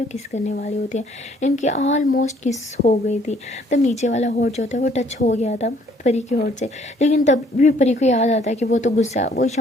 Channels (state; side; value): normal; both; correlation 0.62